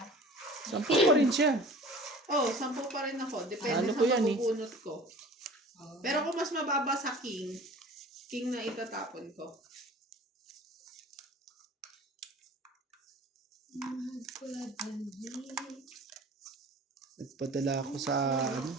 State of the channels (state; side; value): normal; both; correlation 0.44